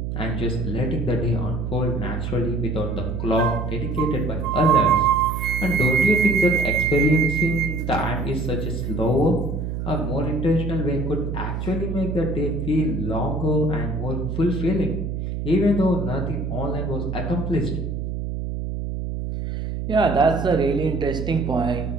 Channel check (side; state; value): right; noise; hum, 4 dB below the sound